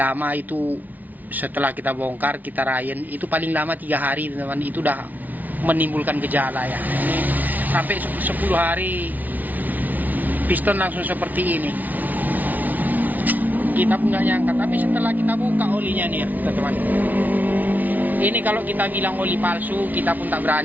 lama itu setelah kita bongkar, kita rayen, itu paling lama 3 hari teman-teman, itu udah menimbulkan gejala ya. Ini sampai 10 hari piston langsung seperti ini. Kita pun nggak nyangka, tapi setelah kita buka olinya nih ya teman-teman. Ini kalau kita bilang oli palsu, kita pun tak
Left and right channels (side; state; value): left; late; 0.078 ms